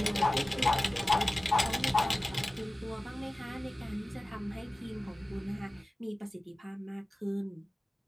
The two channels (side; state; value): both; normal; correlation 0.97